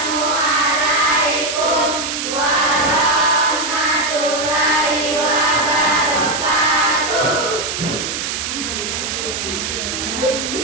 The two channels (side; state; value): right; noise; hiss, 3 dB below the sound